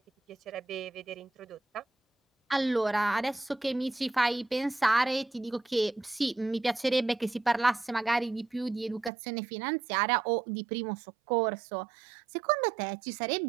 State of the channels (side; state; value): left; drops out; at 9.1 s